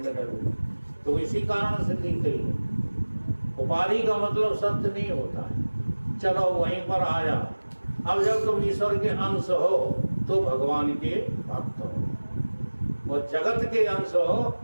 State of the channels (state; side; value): inverted; both; correlation -1.00